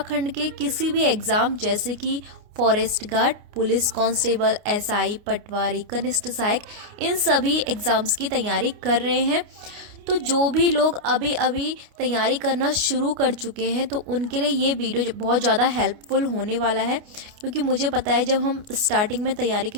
के किसी भी एग्ज़ाम जैसे कि forest guard, police constable, SI, patwari, कनिष्ठ सहायक, इन सभी एग्ज़ाम्स की तैयारी कर रहे हैं। तो जो भी लोग अभी अभी तैयारी करना शुरू कर चुके हैं तो उनके लिए ये वीडियो बहुत ज़्यादा हेल्पफुल होने वाला है, क्योंकि मुझे पता है जब हम स्टार्टिंग में तैयारी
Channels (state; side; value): late; left; 29 ms